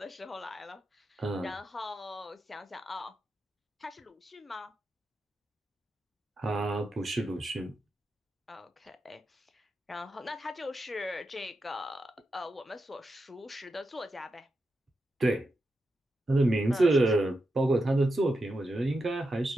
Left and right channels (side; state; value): both; normal; correlation 0.87